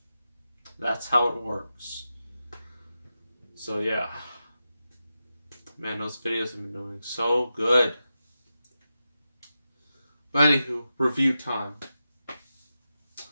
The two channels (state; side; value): inverted; both; correlation -0.91